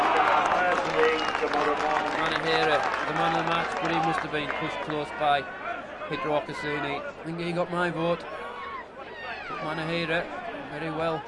Star first thing tomorrow morning. Manahera, the man of the match, but he must have been pushed close by Peter Ocassini. I think he got my vote. But Manahera, very well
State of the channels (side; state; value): both; identical; correlation 1.00